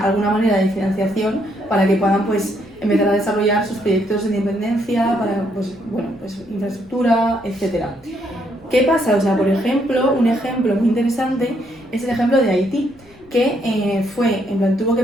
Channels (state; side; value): noise; left; rumble, 28 dB below the sound